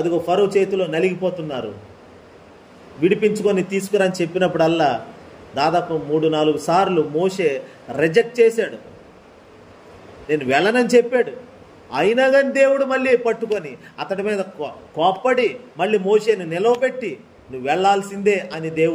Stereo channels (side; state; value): both; identical; correlation 1.00